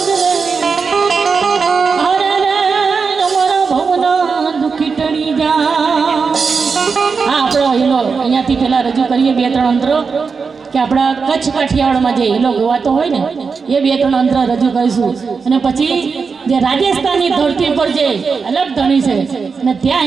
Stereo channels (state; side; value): quieter; left; 5.2 dB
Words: રે. અરે રે અમારા ભવના દુઃખી ટળી જા. આપણો હિલો અહીંયાથી પેલા રજૂ કરીએ 2-3 અંતરો કે આપણા કચ્છ કાઠિયાવાડમાં જે હિલો ગવાતો હોય ને એ 2-3 અંતર રજૂ કરીશું. અને પછી જે રાજસ્થાનની ધરતી પર જે અલગ ધણી છે અને ત્યાં